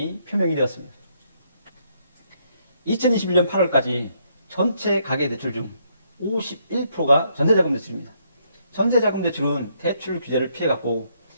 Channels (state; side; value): inverted; both; correlation -0.73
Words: 표명이 되었습니다. 2021년 8월까지 전체 가계대출 중 51%가 전세자금 대출입니다. 전세자금 대출은 대출 규제를 피해갔고